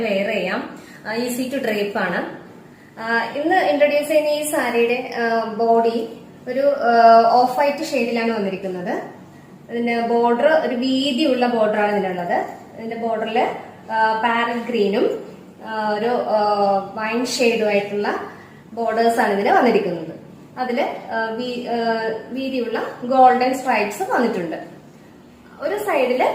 വെയർ ചെയ്യാം, ഈസി ടു ഡ്രേപ്പ് ആണ്. ഇന്ന് ഇൻട്രൊഡ്യൂസ് ചെയ്യുന്ന ഈ സാരിയുടെ ബോഡി ഒരു ഓഫ് വൈറ്റ് ഷെയ്ഡിലാണ് വന്നിരിക്കുന്നത്. ഇതിന്റെ ബോർഡർ ഒരു വീതിയുള്ള ബോർഡറാണ് ഇതിനുള്ളത്. ഇതിന്റെ ബോർഡറിൽ പാരറ്റ് ഗ്രീനും ഒരു വൈൻ ഷെയ്ഡുമായിട്ടുള്ള ബോർഡേഴ്സ് ആണ് ഇതിന് വന്നിരിക്കുന്നത്. അതില് വീതിയുള്ള ഗോൾഡൻ സ്ട്രൈപ്സ് വന്നിട്ടുണ്ട്. ഒരു സൈഡില്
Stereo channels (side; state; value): both; identical; correlation 1.00